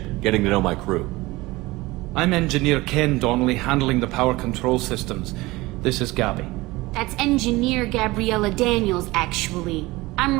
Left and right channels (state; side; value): quieter; left; 20.6 dB